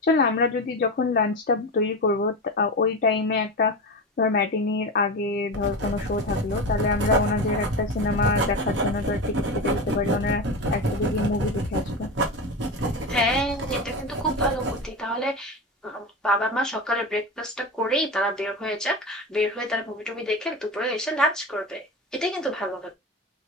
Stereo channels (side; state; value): both; normal; correlation 0.23